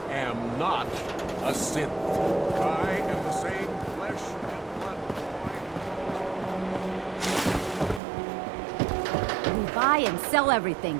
am not a synth. I am the same flesh and blood. We buy and sell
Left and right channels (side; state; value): left; drops out; at 8.0 s